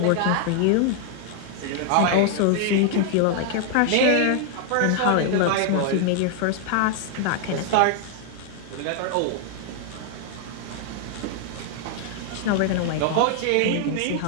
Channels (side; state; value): both; different; correlation 0.00